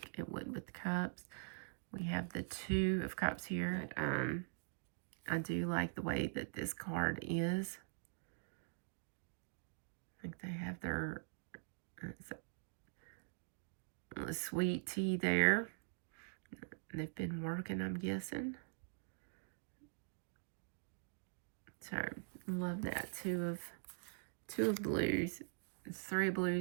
it would with the cups. We have the Two of Cups here. I do like the way that this card is. I think they have their sweet tea there. They've been working, I'm guessing. So, love that. Two of blues. Three of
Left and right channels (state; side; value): silent; left; digital silence